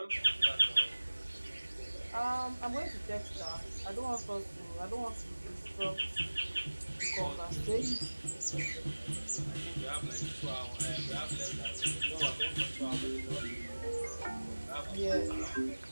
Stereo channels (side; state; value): both; inverted; correlation -1.00